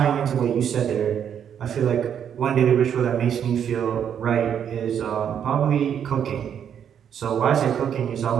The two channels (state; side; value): quieter; left; 8.6 dB